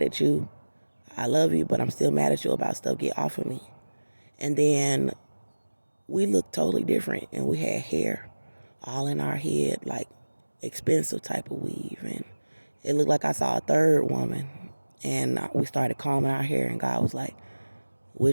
at you. I love you, but I'm still mad at you about stuff. Get off of me. And then we looked totally different, and we had hair all in our head, like expensive type of weave, and it looked like I saw a third woman. And we started combing our hair, and God was like,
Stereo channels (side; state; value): both; inverted; correlation -1.00